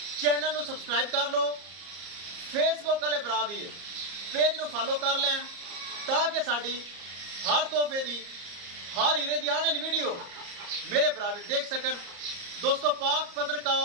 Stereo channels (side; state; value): left; late; 34 ms